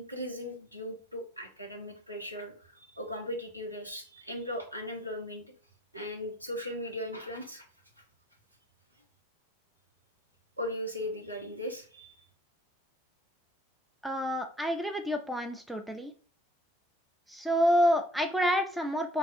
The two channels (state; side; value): normal; both; correlation 0.59